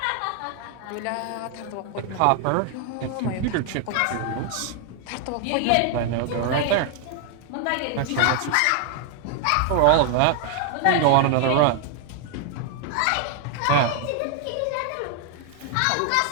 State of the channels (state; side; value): different; both; correlation 0.00